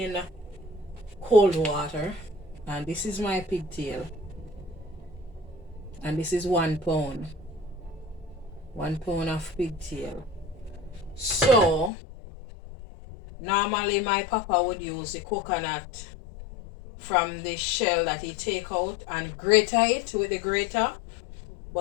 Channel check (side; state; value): right; drops out; at 11.9 s